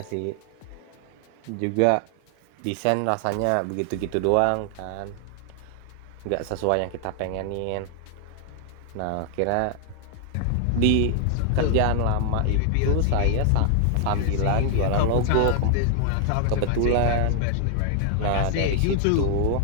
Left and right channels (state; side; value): different; both; correlation 0.00